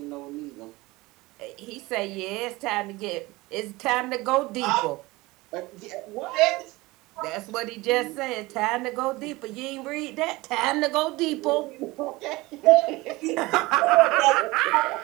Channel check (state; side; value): quieter; left; 21.3 dB